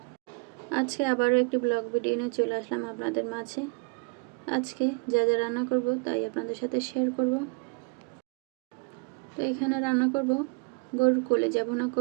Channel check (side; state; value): left; quieter; 31.2 dB